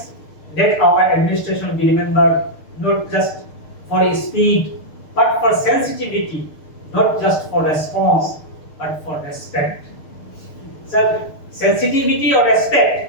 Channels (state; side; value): late; right; 6.6 ms